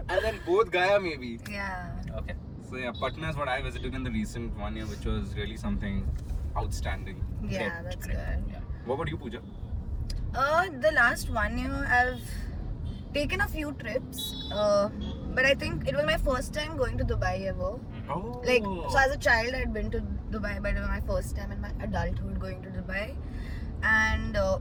And then both Gaya maybe. Yeah. Okay. So yeah, Patna is what I visited in the recent 1 year, which was really something outstanding. Yeah, that's good. Yeah. What about you, Pooja? The last 1 year I've taken a few trips, but I think it was my first time going to Dubai ever. Oh. Like, so as a child I'd been to Dubai, but it was my first time in my adulthood going to Dubai. And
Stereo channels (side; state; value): both; identical; correlation 1.00